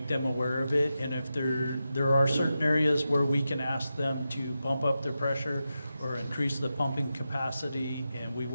them aware of it, and if there are certain areas where we can ask them to bump up their pressure or increase the pumping capacity, and we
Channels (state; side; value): inverted; both; correlation -0.90